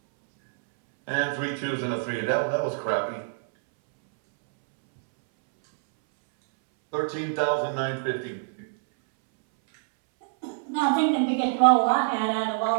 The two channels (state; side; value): silent; left; 61 dB below the other